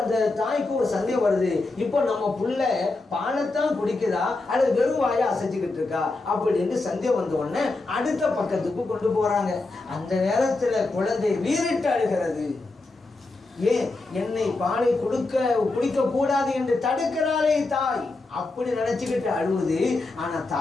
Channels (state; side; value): quieter; right; 3.3 dB